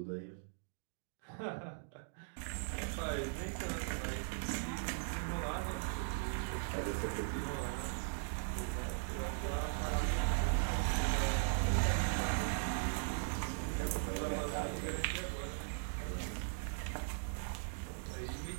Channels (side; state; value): left; silent; digital silence